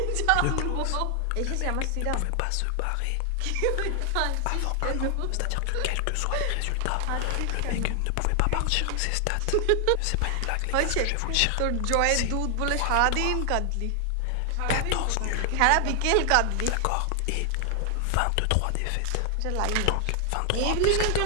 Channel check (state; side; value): different; both; correlation 0.00